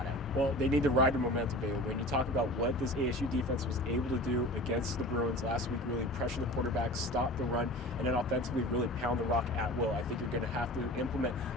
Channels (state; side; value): normal; both; correlation 0.38